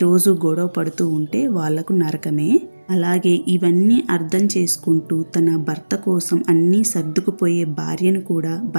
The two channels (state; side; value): inverted; both; correlation -1.00